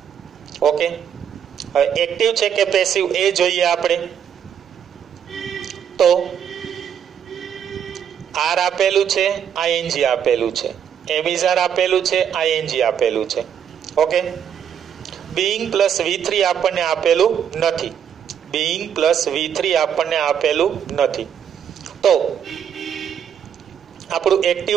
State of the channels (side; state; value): left; quieter; 8.5 dB